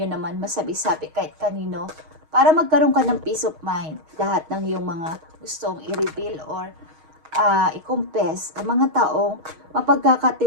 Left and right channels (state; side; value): late; left; 6.4 ms